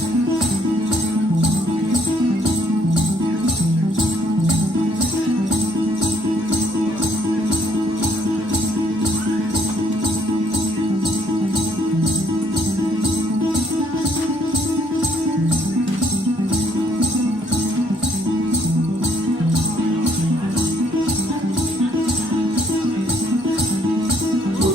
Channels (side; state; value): both; normal; correlation 0.66